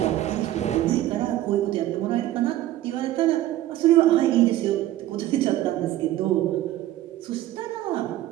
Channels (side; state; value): left; quieter; 14.3 dB